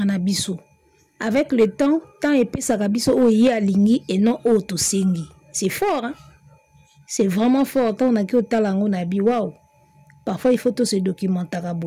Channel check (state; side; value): identical; both; correlation 1.00